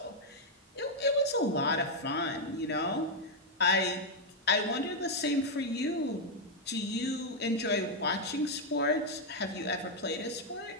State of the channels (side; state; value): both; normal; correlation -0.01